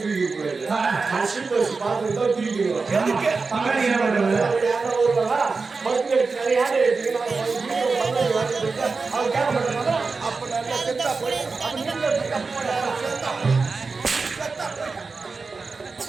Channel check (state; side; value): quieter; left; 4.3 dB